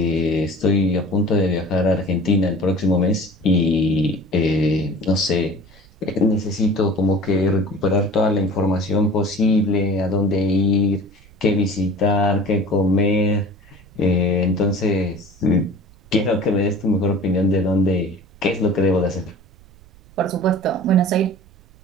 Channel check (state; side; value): noise; right; rumble, 26 dB below the sound